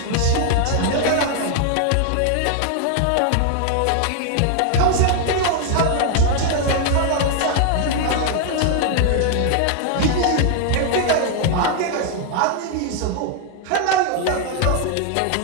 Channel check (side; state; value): both; different; correlation 0.00